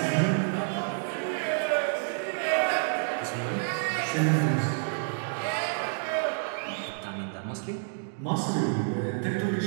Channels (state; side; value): silent; left; digital silence